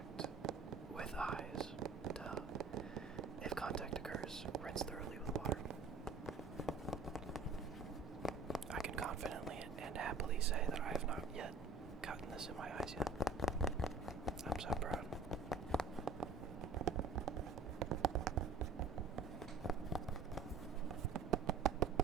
with eyes. Duh. If contact occurs, rinse thoroughly with water. I can confidently and happily say that I have not yet gotten this in my eyes yet. I'm so proud.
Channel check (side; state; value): left; quieter; 4.3 dB